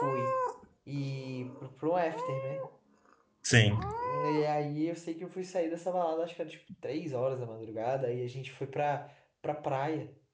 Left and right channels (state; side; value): identical; both; correlation 1.00